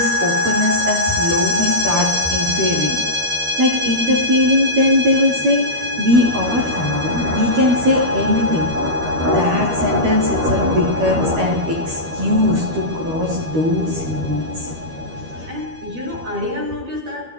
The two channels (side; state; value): left; late; 13 ms